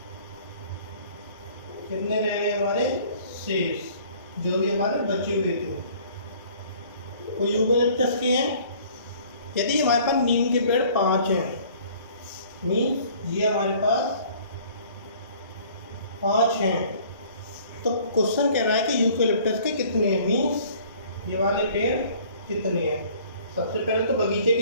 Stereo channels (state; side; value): inverted; both; correlation -0.54